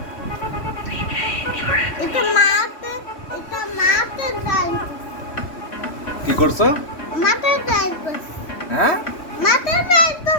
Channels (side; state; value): right; late; 3.1 ms